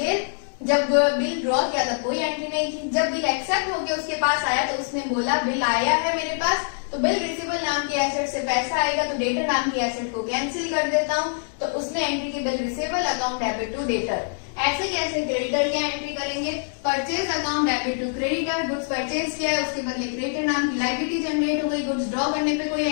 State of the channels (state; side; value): silent; right; 62 dB below the other